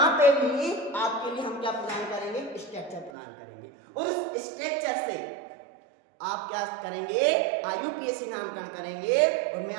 पे भी आपके लिए हम क्या प्रदान करेंगे, स्ट्रक्चर प्रदान करेंगे और उस स्ट्रक्चर से आप क्या करेंगे, IUPAC नामकरण करेंगे। और मैं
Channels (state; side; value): drops out; left; at 3.1 s